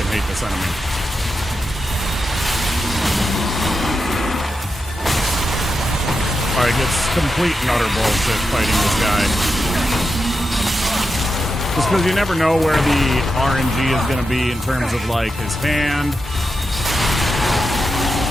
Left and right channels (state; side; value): normal; both; correlation 0.87